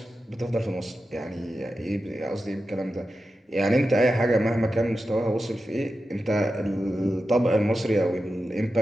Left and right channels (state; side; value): normal; both; correlation 0.91